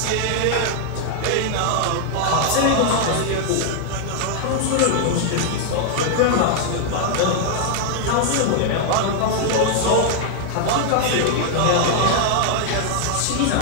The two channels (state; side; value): different; both; correlation 0.00